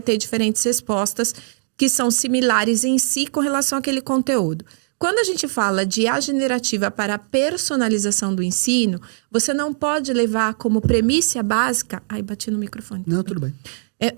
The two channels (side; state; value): left; silent; digital silence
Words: ter diferentes respostas que são similares em si com relação àquele conteúdo. Quando a gente fala de IA generativa para a personalização do ensino, você não pode levar como premissa básica... Ai, bati no microfone. Não, tudo bem.